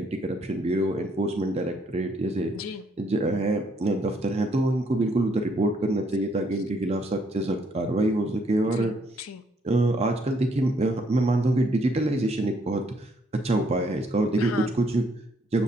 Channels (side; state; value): both; normal; correlation 0.69